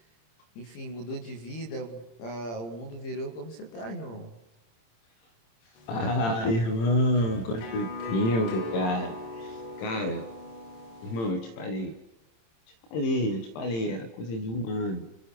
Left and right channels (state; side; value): late; right; 26 ms